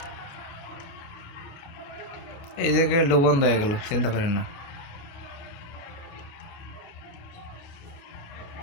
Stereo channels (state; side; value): late; right; 29 ms